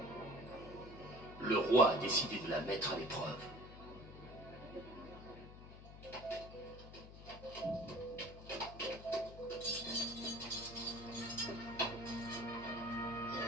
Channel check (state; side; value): noise; left; hum, 15 dB below the sound